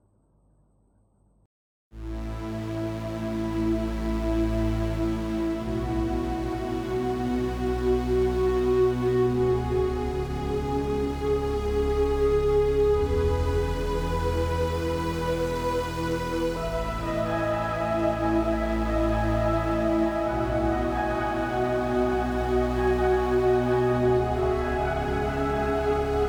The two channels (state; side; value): identical; both; correlation 1.00